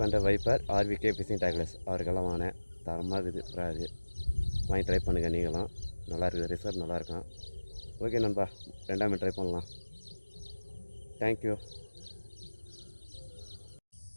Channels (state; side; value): inverted; both; correlation -1.00